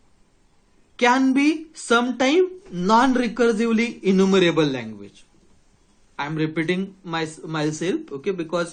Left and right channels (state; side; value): identical; both; correlation 1.00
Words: can be sometime non-recursively enumerable language. I am repeating myself, okay,